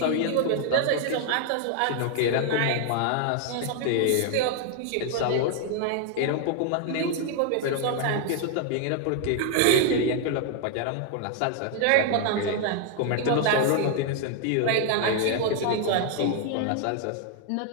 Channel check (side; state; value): both; different; correlation 0.00